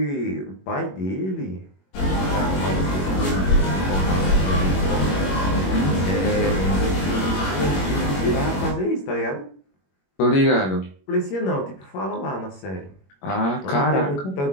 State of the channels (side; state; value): right; late; 21 ms